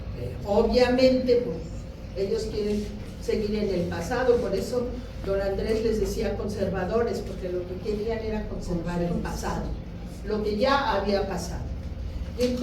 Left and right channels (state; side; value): identical; both; correlation 1.00